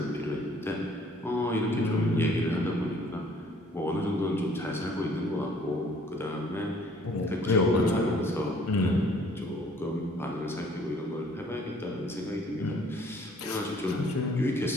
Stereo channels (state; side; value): normal; both; correlation 0.58